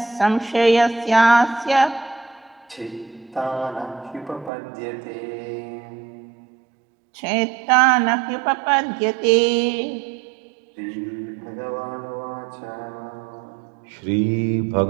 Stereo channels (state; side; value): drops out; left; at 4.5 s